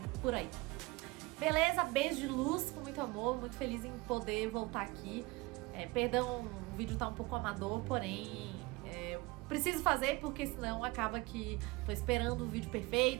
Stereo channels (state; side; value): quieter; left; 23.1 dB